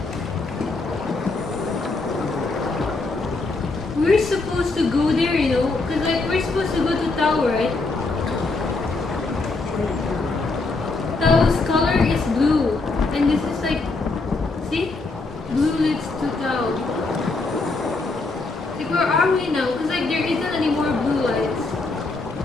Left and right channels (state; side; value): quieter; right; 3.5 dB